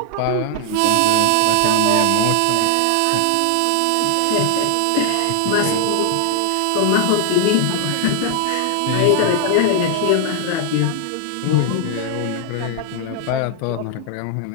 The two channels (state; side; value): different; both; correlation 0.00